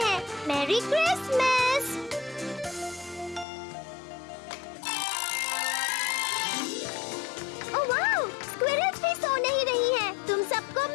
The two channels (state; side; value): drops out; right; at 3.5 s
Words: है। Merry Christmas. Oh wow, squirrels भी सो नहीं रही हैं। तुम सबको